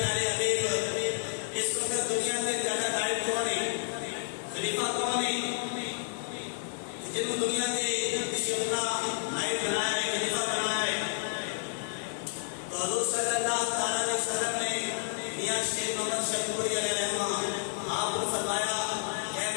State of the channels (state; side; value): silent; right; digital silence